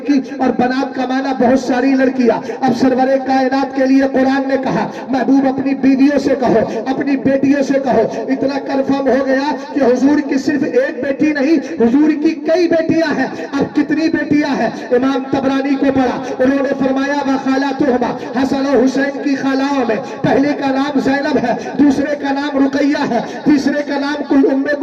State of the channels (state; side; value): identical; both; correlation 1.00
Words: और बनात का माना बहुत सारी लड़कियां। अब सरवरे कायनात के लिए कुरान ने कहा महबूब अपनी बीवियों से कहो, अपनी बेटियों से कहो। इतना कंफर्म हो गया कि हुजूर की सिर्फ एक बेटी नहीं, हुजूर की कई बेटियां हैं। अब कितनी बेटियां हैं? इमाम तबरानी को पढ़ा, उन्होंने फरमाया व खालातुहुमा, हसन और हुसैन की खालाओं में पहले का नाम ज़ैनब है, दूसरे का नाम रुकैया है, तीसरे का नाम उम्मे